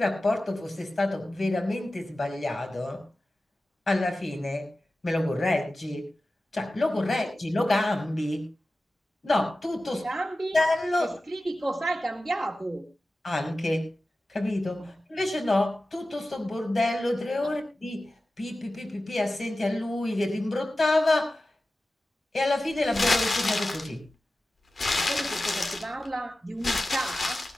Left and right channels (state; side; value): normal; both; correlation 0.95